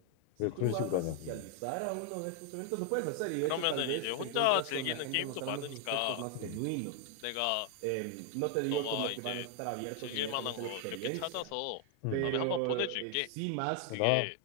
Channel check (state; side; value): different; both; correlation 0.00